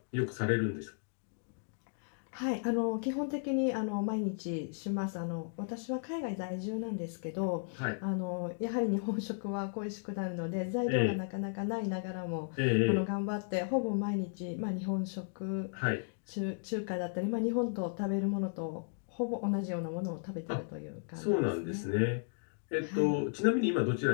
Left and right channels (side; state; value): right; silent; digital silence